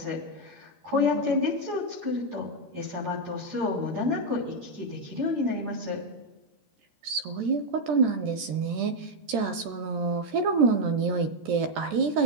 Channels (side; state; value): left; late; 13 ms